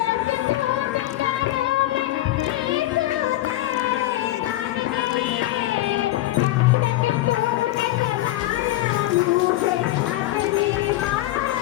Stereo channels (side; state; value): right; quieter; 15.7 dB